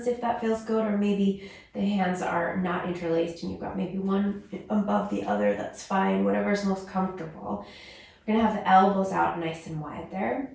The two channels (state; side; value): identical; both; correlation 1.00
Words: if that feels good, or maybe the hands are not interlaced and you've got maybe one above the other. That's fine, whatever's most comfortable. We're going to have the elbows out nice and wide there.